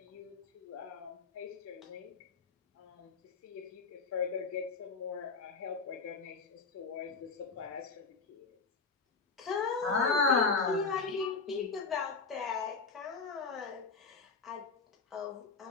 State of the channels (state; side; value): quieter; right; 4.6 dB